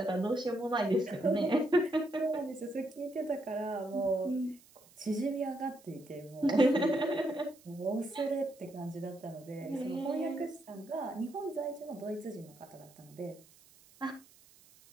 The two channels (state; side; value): noise; right; hiss, 26 dB below the sound